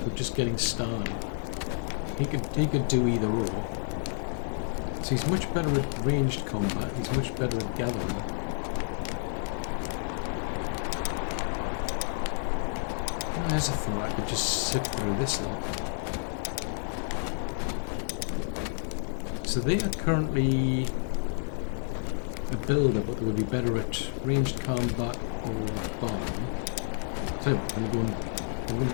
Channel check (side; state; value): right; silent; 58 dB below the other